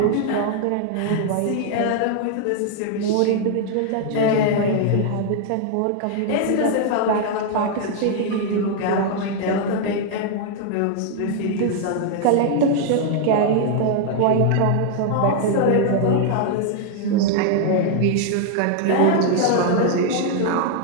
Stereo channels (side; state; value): both; different; correlation 0.00